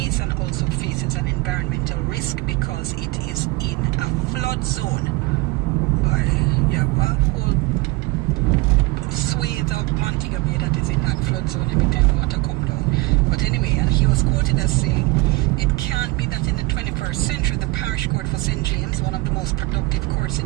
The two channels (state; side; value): quieter; left; 23.0 dB